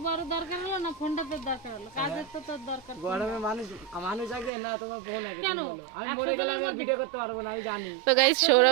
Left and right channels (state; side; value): drops out; left; at 4.5 s